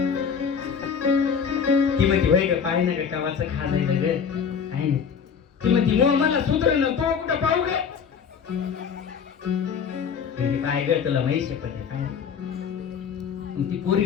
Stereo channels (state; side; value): quieter; right; 6.9 dB